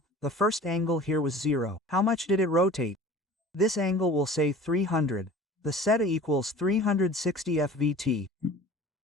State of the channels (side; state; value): both; normal; correlation 0.43